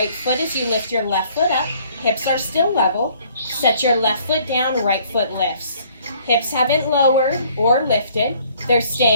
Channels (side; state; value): both; inverted; correlation -0.60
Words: foot as you lift your left foot up. Hips are still level. Set your left foot down, right foot lifts. Hips haven't lowered or lifted. They're